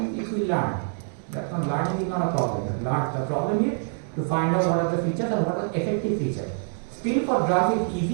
it will learn. That's not learning is not a problem. The problem is to find out what are the features and what are the effective features. Still for drugs it's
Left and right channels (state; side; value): silent; left; digital silence